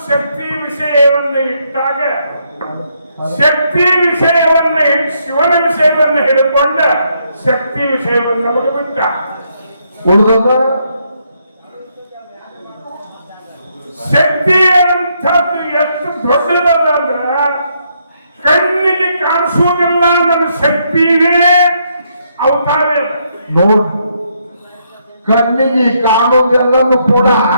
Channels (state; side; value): inverted; both; correlation -0.75